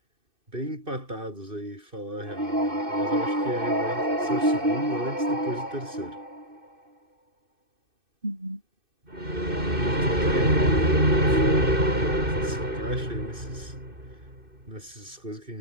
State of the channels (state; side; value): late; left; 2.6 ms